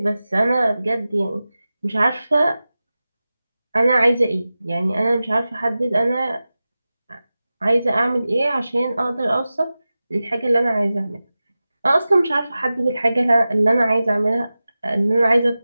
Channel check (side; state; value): both; inverted; correlation -0.95